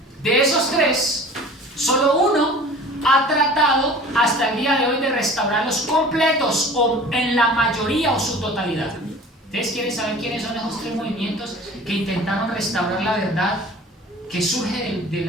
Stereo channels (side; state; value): both; normal; correlation 0.43